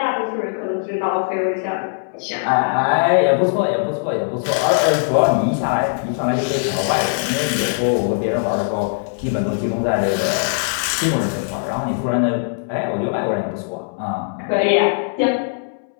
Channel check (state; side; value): silent; right; 66 dB below the other